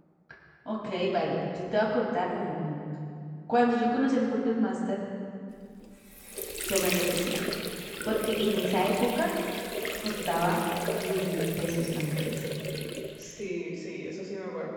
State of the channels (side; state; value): both; identical; correlation 1.00